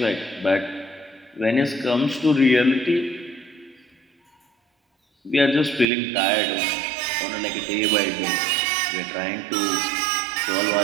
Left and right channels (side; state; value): left; drops out; at 5.9 s